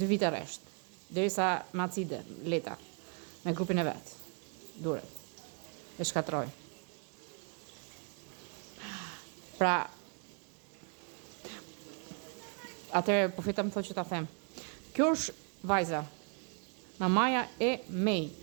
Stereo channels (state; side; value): quieter; left; 38.1 dB